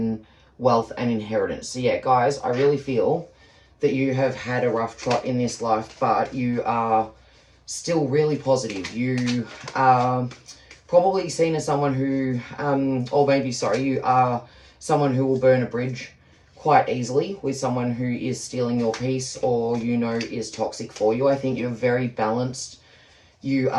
wealth, and inheritance. So yeah, guys, I really feel that you have had a rough trot in this life, but you are still really positive. You are probably seen as someone who, or maybe, sorry, you are someone who will burn a bridge quite easily with someone who is stealing your peace or, you know, is toxic for you. I think you're very balanced. You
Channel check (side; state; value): both; identical; correlation 1.00